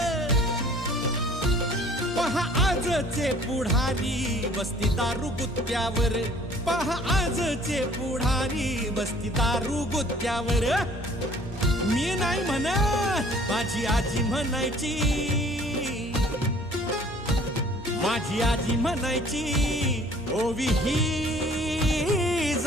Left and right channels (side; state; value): both; normal; correlation 0.54